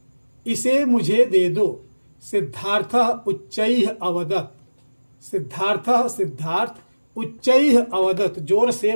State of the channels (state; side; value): inverted; both; correlation -1.00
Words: इसे मुझे दे दो। सिद्धार्थः उच्चैः अवदत्। सिद्धार्थ उच्चैः अवदत्, जोर